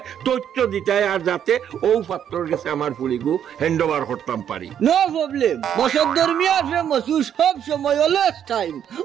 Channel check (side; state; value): left; quieter; 9.3 dB